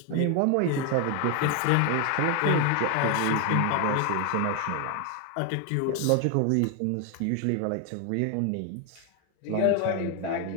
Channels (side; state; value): both; different; correlation 0.01